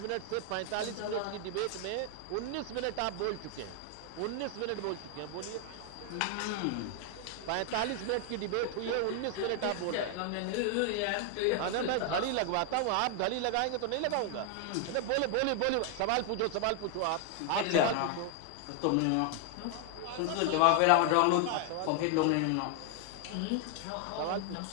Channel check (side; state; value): both; different; correlation 0.00